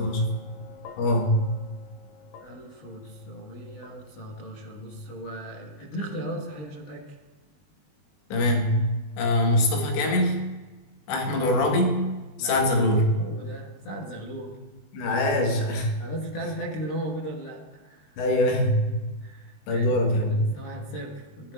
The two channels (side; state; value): right; late; 20 ms